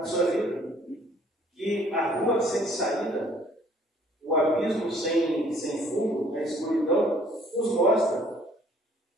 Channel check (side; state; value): both; normal; correlation 0.59